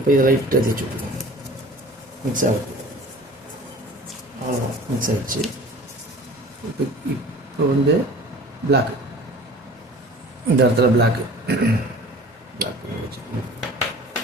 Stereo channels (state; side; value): normal; both; correlation 0.43